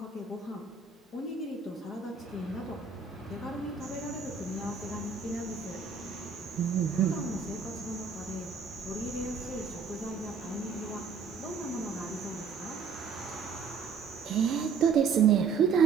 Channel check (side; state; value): left; quieter; 5.6 dB